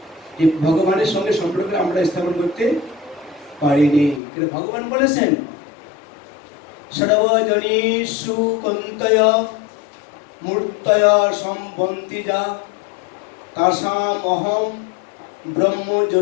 যে ভগবানের সঙ্গে সম্পর্ক আমরা স্থাপন করতে পারিনি। কিন্তু ভগবান বলেছেন সর্বজনীষু কন্তয় মূর্তয় সম্বন্তি যা তাসাম অহম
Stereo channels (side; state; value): right; drops out; at 4.2 s